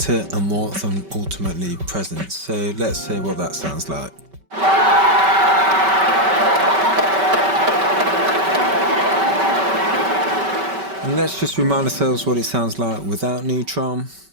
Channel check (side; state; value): left; late; 5.2 ms